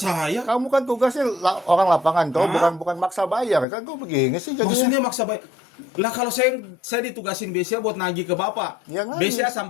saya? Kamu kan tugasnya orang lapangan, toh bukan maksa bayar kan? Kok begini sih jadinya? Maksudnya maksa bayar. Lah kalau saya ditugasin BCA buat nagih ke Bapak. Ya, nagih. BCA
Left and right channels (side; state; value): right; drops out; at 3.7 s